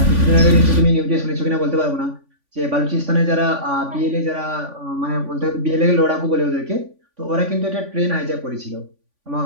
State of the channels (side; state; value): left; late; 3.5 ms